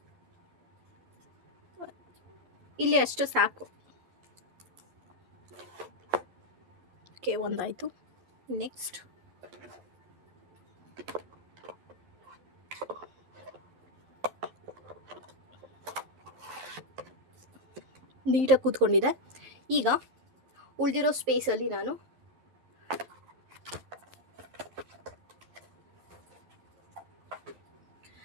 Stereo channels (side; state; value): left; late; 12 ms